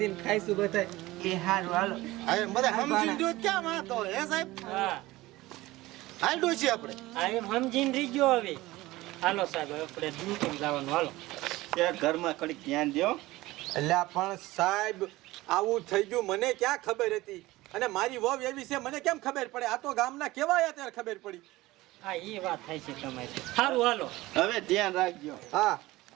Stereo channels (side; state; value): left; quieter; 18.7 dB